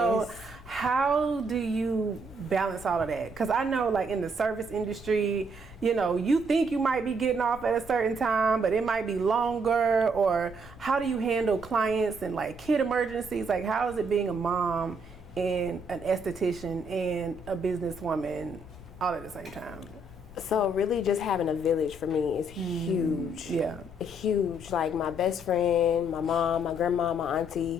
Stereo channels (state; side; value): noise; left; rumble, 18 dB below the sound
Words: how do you balance all of that? Because I know, like, in the service industry, you know, you think you might be getting off at a certain time, but it might be longer. Or how do you handle clients and like kid emergencies? Like, how is it being a mom and an esthetician and a businesswoman all at the same time? So really just having a village for me is huge. Yeah. Huge. Like my best friend, my mom, my grandma, my